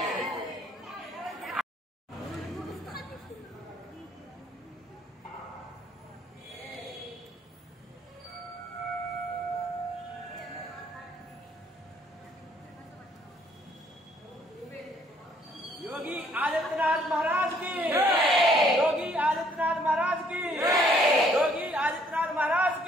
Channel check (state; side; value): normal; both; correlation 0.64